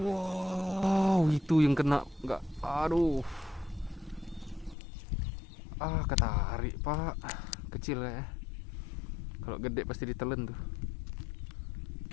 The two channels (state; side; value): drops out; right; at 4.8 s